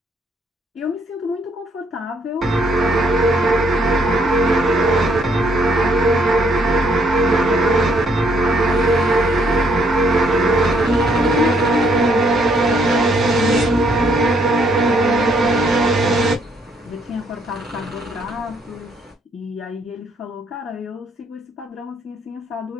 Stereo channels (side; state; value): both; normal; correlation 0.69